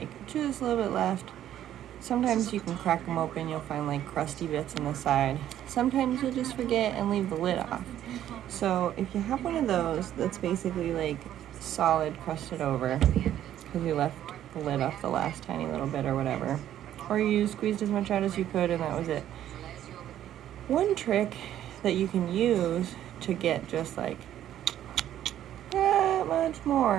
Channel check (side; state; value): left; quieter; 11.6 dB